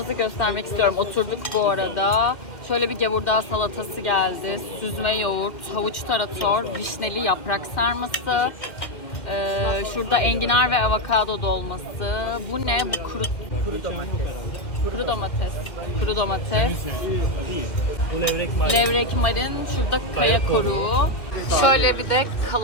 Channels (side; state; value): right; late; 2.1 ms